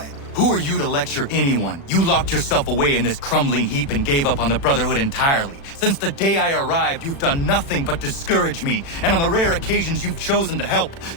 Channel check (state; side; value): late; right; 36 ms